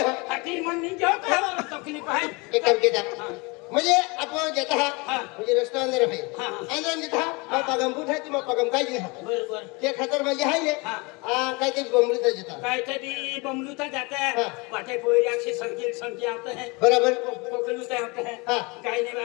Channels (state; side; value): quieter; right; 27.6 dB